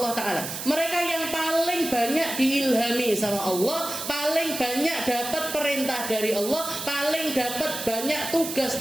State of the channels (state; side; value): noise; right; hiss, 7 dB below the sound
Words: Ta'ala. Mereka yang paling banyak diilhami sama Allah, paling banyak dapat perintah dari Allah, paling dapat banyak tugas